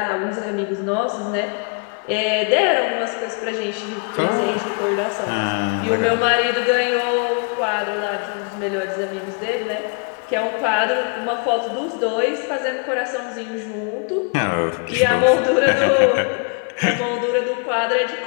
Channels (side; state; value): right; quieter; 38.4 dB